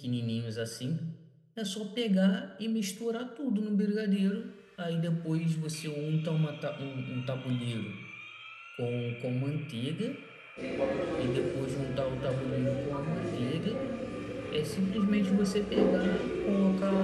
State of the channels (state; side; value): identical; both; correlation 1.00